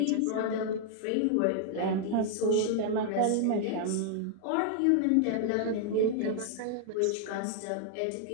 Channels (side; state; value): both; different; correlation 0.00